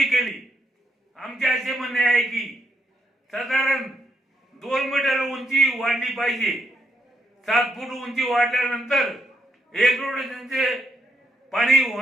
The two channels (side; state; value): both; normal; correlation 0.78